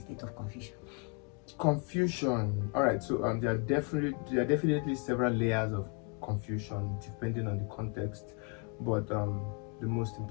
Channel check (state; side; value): quieter; right; 36.9 dB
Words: of confusion. All right. So there are definitely several layers of confusion depending on the context, but the most